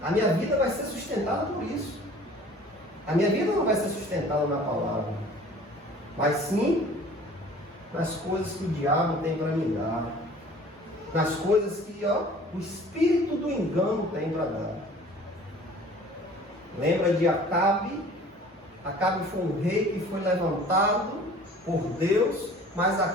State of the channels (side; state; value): both; normal; correlation 0.48